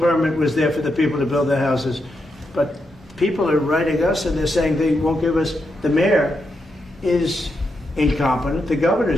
was there for the people to build their houses. But people are writing us and they're saying they won't give us. The mayor is incompetent. The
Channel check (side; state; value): both; normal; correlation 0.84